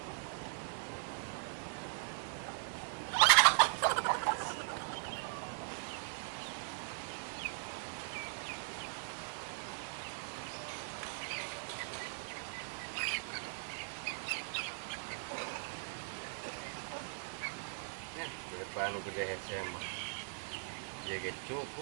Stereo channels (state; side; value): silent; left; 51 dB below the other